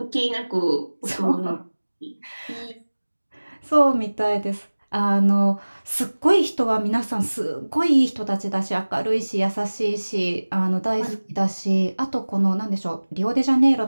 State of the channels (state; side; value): inverted; both; correlation -1.00